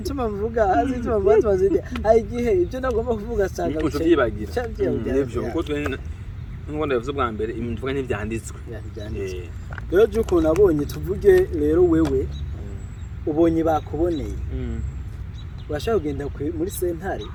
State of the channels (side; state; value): both; identical; correlation 1.00